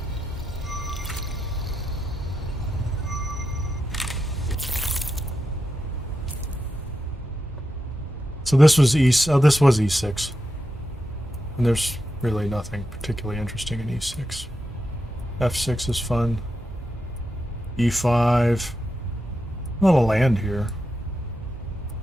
So this was this was E6, and there's really nothing particularly interesting in E6. F6 is fun. E5, a lot of land here.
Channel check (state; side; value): normal; both; correlation 0.87